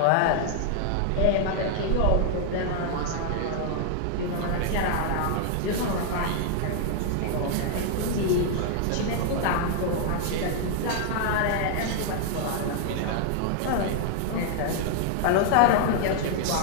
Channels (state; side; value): different; both; correlation -0.01